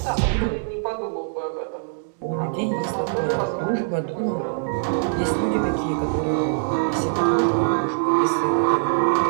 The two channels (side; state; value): left; silent; digital silence